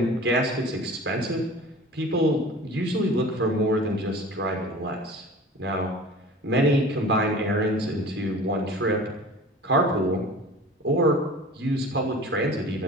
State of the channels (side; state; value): both; normal; correlation 0.41